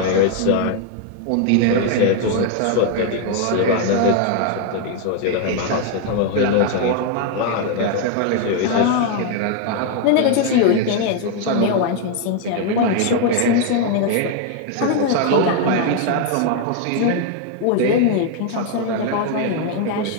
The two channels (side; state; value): both; different; correlation 0.01